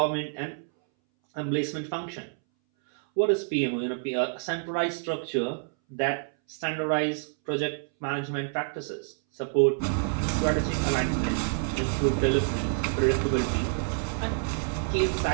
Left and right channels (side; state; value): left; silent; 60 dB below the other